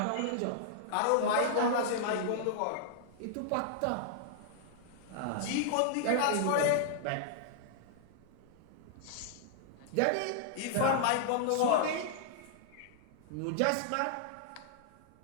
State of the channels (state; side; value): different; both; correlation -0.01